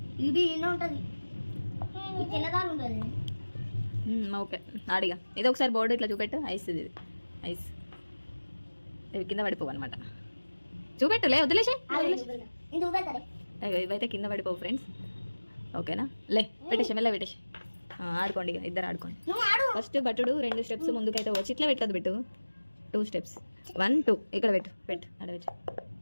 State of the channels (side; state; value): both; inverted; correlation -1.00